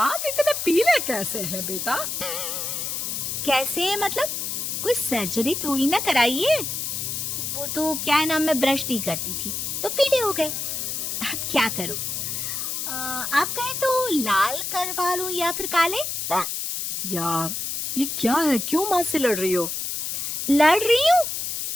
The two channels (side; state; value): left; noise; hiss, 3 dB below the sound